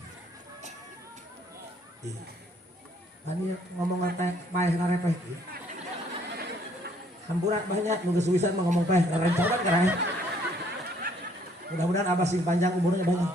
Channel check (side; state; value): both; normal; correlation 0.64